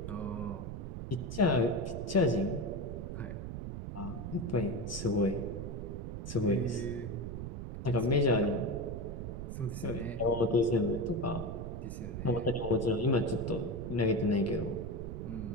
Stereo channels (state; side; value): noise; right; rumble, 6 dB below the sound